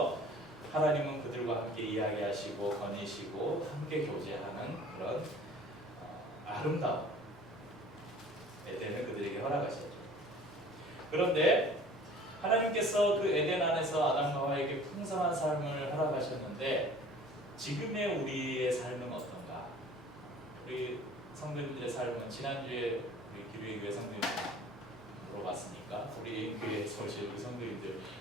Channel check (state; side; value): normal; both; correlation 0.48